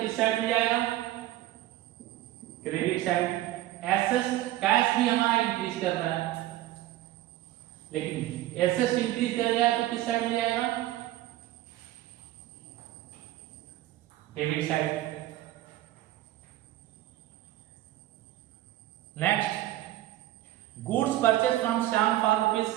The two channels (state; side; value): quieter; left; 15.0 dB